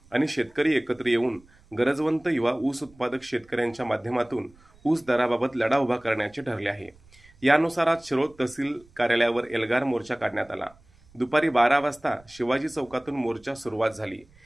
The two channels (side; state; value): right; noise; rumble, 28 dB below the sound